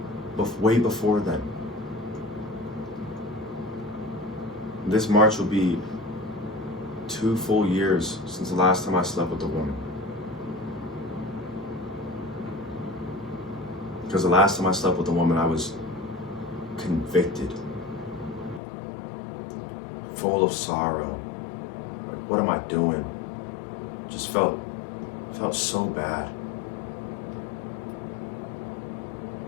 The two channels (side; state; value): right; drops out; at 18.6 s